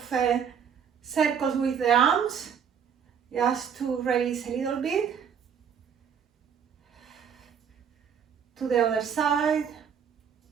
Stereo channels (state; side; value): quieter; left; 7.5 dB